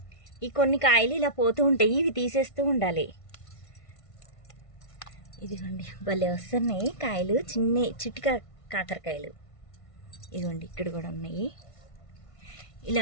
ఈ కొన్ని కాయలు ఇలా పోతూ ఉంటాయి, ఇవి తీసేస్తూ ఉండాలి. ఇదిగోండి భలే వస్తున్నాయి కాయలు, చిట్టి కాకరకాయలు. ఇదిగోండి ఇక్కడ కూడా ఉన్నాయి.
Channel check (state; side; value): late; right; 1.5 ms